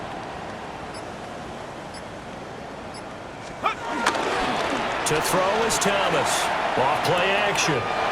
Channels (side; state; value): both; identical; correlation 1.00